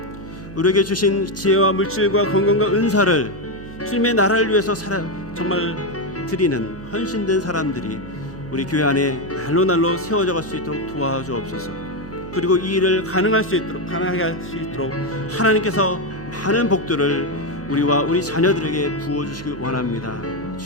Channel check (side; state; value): right; noise; hum, 14 dB below the sound